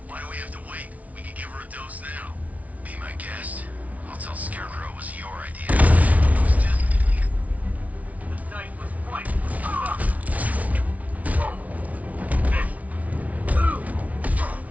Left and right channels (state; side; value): late; left; 0.069 ms